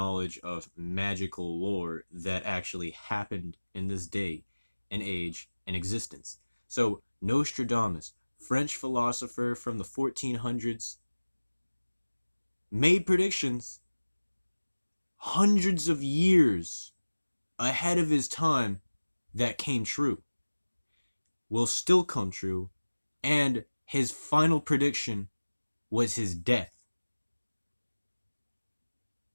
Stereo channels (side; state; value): both; inverted; correlation -1.00